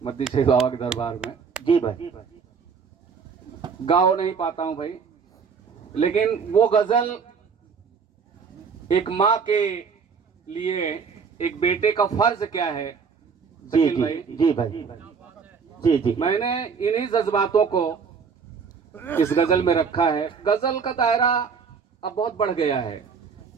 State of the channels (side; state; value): left; quieter; 5.9 dB